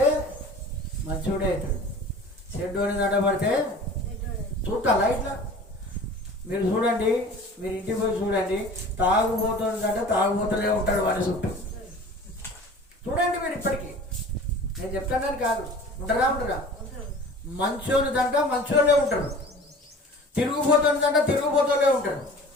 మంచోడే అవుతాడు, చెడ్డోని దండ పడితే చూడాలా? ఇట్లా మీరు చూడండి, మీరు ఇంటికి పోయి చూడండి, తాగుబోతుందంటే తాగుబోతలే ఉంటాడు వాడి చుట్టూ. చూడండి మీరు ఇప్పటికీ, నేను చెప్తానని కాదు, ఉంటారా? మంచోని దంట మంచోళ్ళే ఉంటాడు, తిరుగుబోతుని దంట తిరుగుబోతులే ఉంటాడు.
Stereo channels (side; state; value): both; normal; correlation 0.43